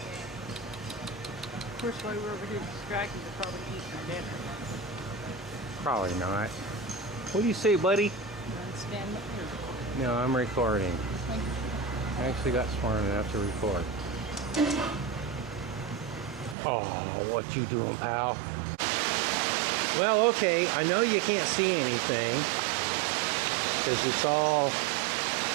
Of course, while we're over here distracted, they're probably eating our dinner. Probably not. What do you say, buddy? Stand up here. No, I'm recording. I actually got smart enough to record. Oh, what you doing, pal? Well, okay, I know you can't see anything because it's all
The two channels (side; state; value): left; drops out; at 16.6 s